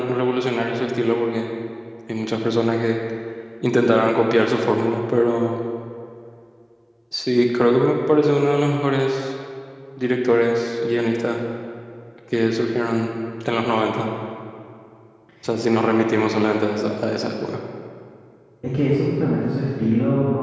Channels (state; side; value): identical; both; correlation 1.00